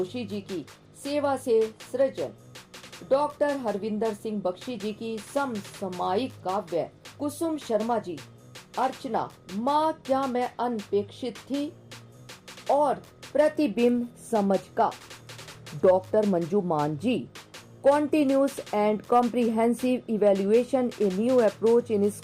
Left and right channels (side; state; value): both; identical; correlation 1.00